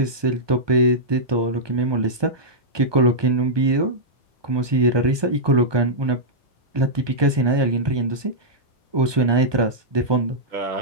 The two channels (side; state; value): left; late; 1.2 ms